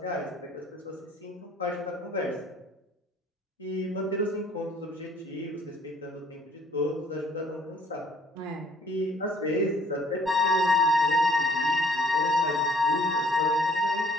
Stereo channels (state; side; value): normal; both; correlation 0.59